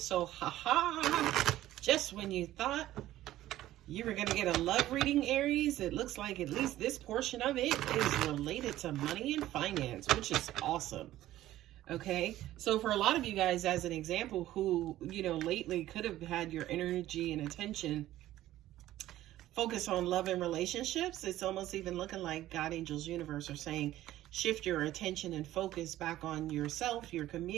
just when you thought you were going to get a love reading, Aries, it looks like at least this portion of it is related to money and finance, which is awesome. Okay, so for a lot of you guys, as an example, who, lately could have had your energy and attention focus on love and relationships, it's almost even looking like God, angels, universe are saying, shift your attention and focus back on yourself, your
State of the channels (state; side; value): quieter; left; 14.4 dB